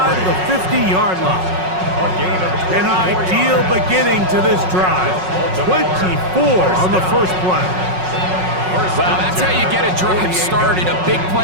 of the 50-yard line. An ideal beginning to this drive. 24 on the first play. Well, that's how you get a drive started. A big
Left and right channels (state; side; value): late; left; 5.4 ms